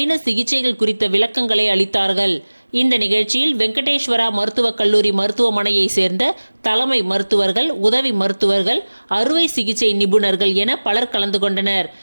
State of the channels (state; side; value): inverted; both; correlation -1.00